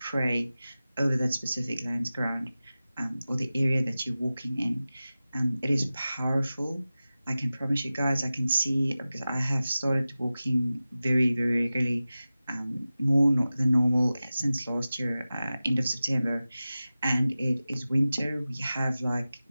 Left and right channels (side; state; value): both; inverted; correlation -0.95